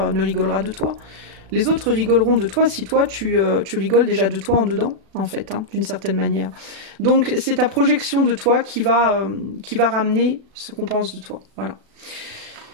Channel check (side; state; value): left; late; 36 ms